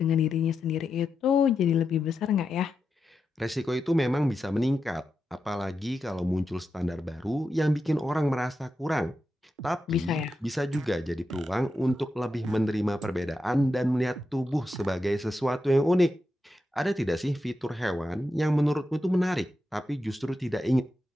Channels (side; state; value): both; normal; correlation 0.88